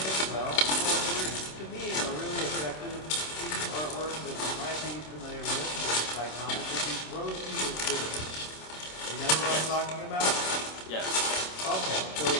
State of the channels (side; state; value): right; late; 26 ms